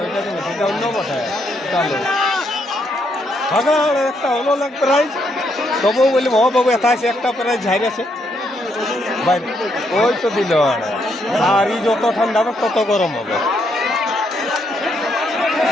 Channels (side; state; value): both; normal; correlation 0.75